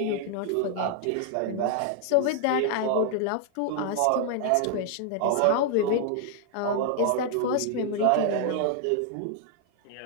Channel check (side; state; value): both; different; correlation 0.00